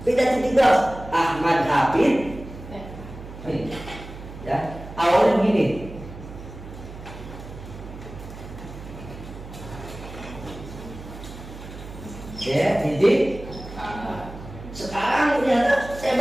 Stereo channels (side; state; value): right; noise; hum, 13 dB below the sound